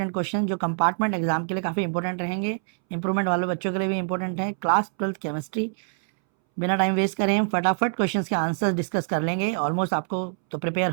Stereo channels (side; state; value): left; silent; 62 dB below the other